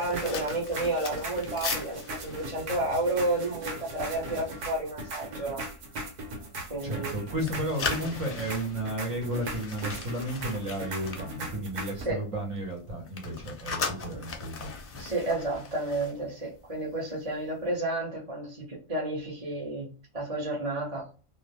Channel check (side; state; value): left; late; 1.5 ms